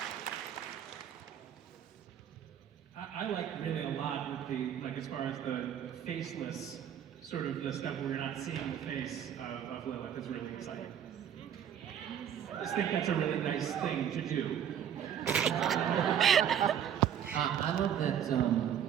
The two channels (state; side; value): quieter; left; 9.3 dB